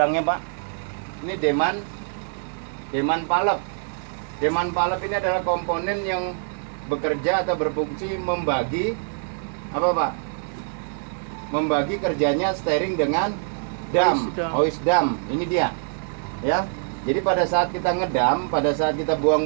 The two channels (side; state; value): left; silent; digital silence